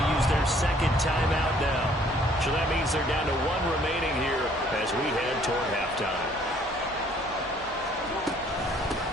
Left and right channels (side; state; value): both; normal; correlation 0.60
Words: use their second timeout now. So that means they're down to 1 remaining here as we head toward halftime.